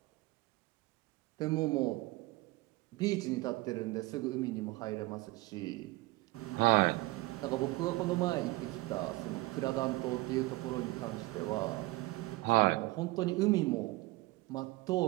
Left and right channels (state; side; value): quieter; left; 21.4 dB